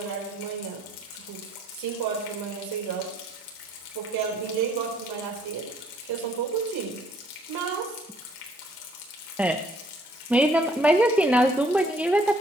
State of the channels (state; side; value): normal; both; correlation 0.63